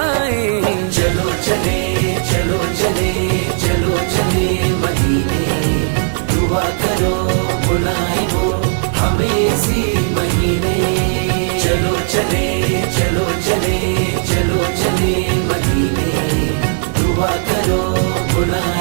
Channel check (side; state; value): left; silent; 63 dB below the other